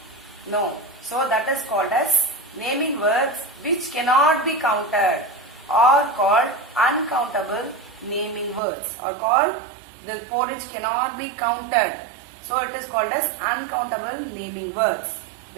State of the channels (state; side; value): drops out; left; at 8.6 s